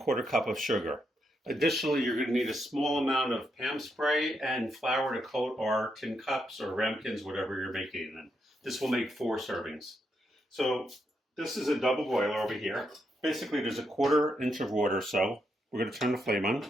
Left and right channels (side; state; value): both; normal; correlation 0.80